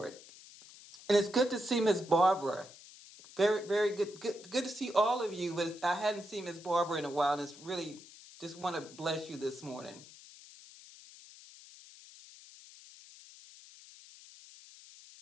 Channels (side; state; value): left; noise; hiss, 19 dB below the sound